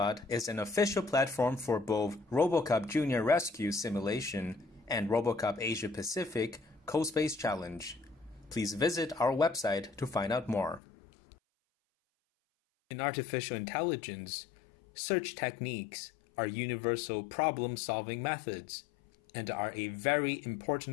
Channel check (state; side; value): drops out; right; at 10.8 s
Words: is an official platform for both RoboCupJunior Rescue Simulation and RoboCup Asia-Pacific CoSpace Challenge. Please visit our website to find out more. In artificial intelligence, search techniques are universal problem-solving methods and are a very